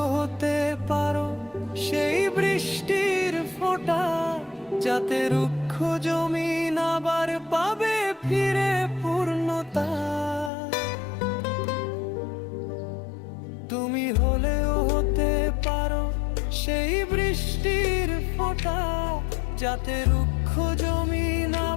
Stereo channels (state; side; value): drops out; right; at 10.5 s